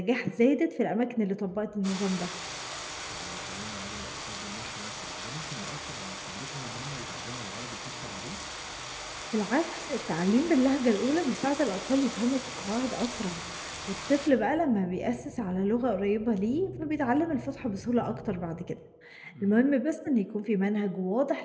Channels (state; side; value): identical; both; correlation 1.00